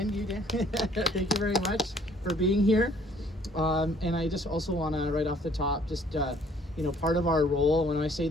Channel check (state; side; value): normal; both; correlation 0.59